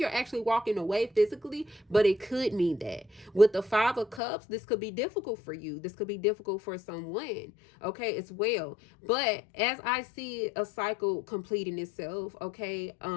you're actually walking away physically, but it could mean that. With the Five of Cups, this could be difficult for you. This could be difficult for someone, okay, as well. But as I see a cycle completing itself, okay,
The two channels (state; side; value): drops out; right; at 4.2 s